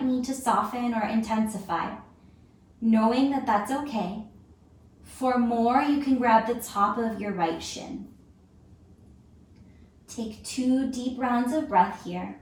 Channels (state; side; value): identical; both; correlation 1.00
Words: need to soften or intensify. Knowing that that's okay. For more, you can grab the top of your right shin. Take 2 deep rounds of breath here.